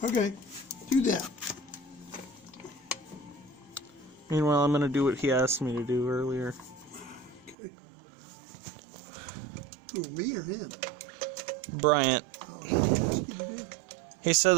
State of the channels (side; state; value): left; drops out; at 7.6 s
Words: Okay, do that. Meanwhile, I'm gonna do what he asked me to do earlier. Okay. Who, me or him? Bryant. Oh, what did he ask you to do? He said